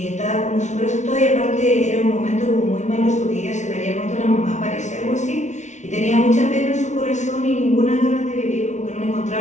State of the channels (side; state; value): right; late; 0.34 ms